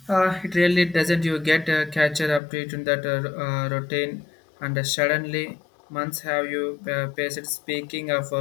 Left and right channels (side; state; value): right; drops out; at 2.4 s